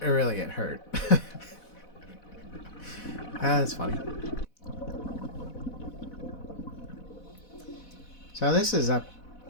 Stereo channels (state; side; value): late; right; 4.1 ms